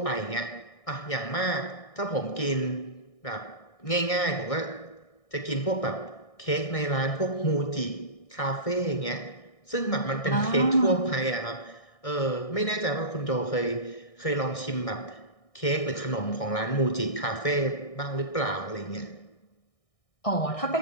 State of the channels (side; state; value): right; late; 1.6 ms